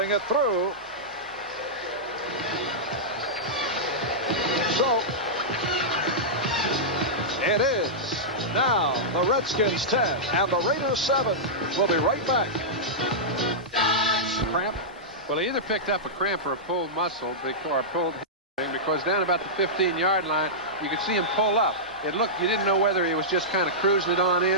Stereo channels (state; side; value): normal; both; correlation -0.12